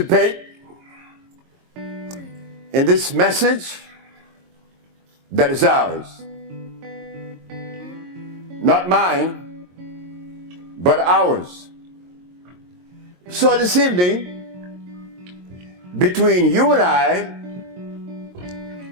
in this message that is ours. Not mine, but ours. So this evening, between you and I,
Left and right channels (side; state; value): left; late; 22 ms